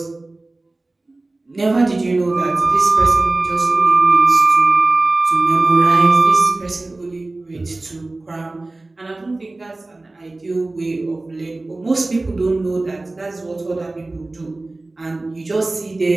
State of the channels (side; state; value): left; quieter; 3.0 dB